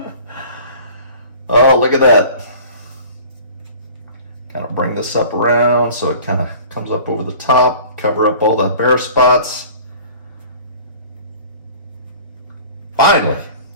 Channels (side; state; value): both; inverted; correlation -0.45